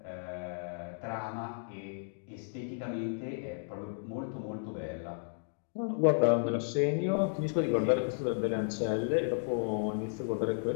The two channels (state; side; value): silent; right; digital silence